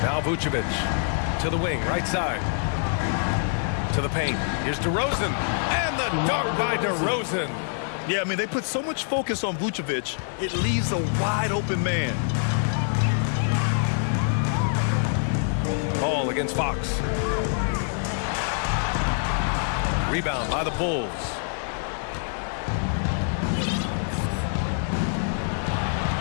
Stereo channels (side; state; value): right; silent; 61 dB below the other